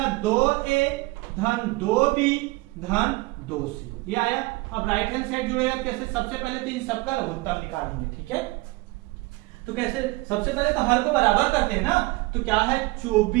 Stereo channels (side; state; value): left; quieter; 22.3 dB